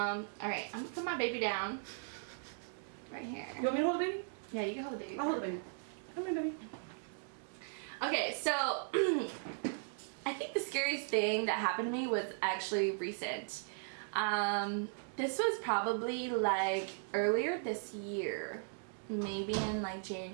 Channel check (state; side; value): silent; left; digital silence